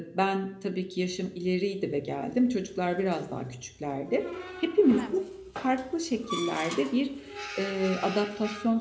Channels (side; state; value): both; identical; correlation 1.00